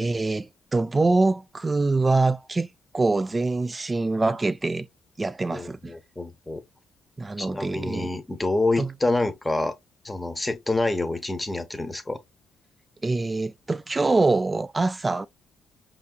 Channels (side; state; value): both; normal; correlation 0.95